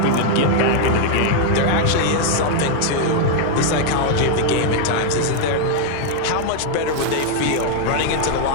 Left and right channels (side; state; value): both; different; correlation 0.00